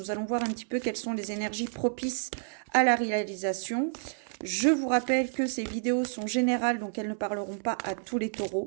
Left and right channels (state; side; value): silent; left; 58 dB below the other